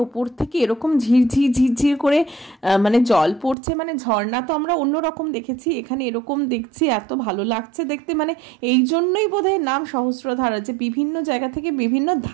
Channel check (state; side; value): drops out; left; at 3.6 s